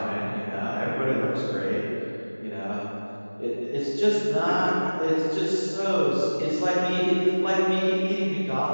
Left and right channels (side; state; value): both; inverted; correlation -1.00